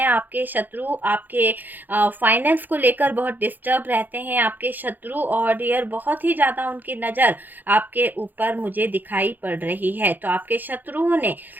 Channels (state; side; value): late; left; 0.087 ms